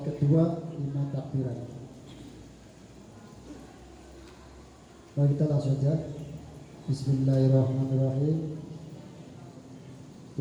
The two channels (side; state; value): both; identical; correlation 1.00